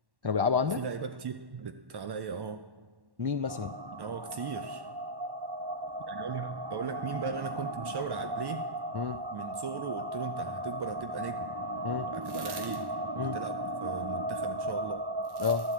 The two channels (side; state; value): left; late; 1.1 ms